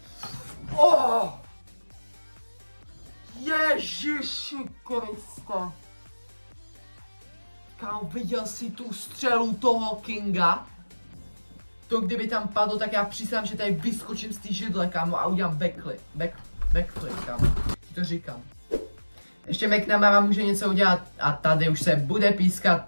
Oh! Ježiši Kriste. Kámo, viděl jsi tu střelu toho Kinga? To kdyby tam padlo, tak já přísám, že tady vyskočím z té židle, kámo, a udělám backflip, kámo. Ti to říkám. Ještě McNamara může něco udělat a tady už se bude pískat.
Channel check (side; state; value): both; inverted; correlation -1.00